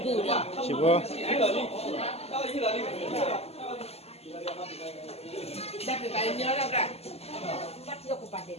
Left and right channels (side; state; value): right; late; 0.29 ms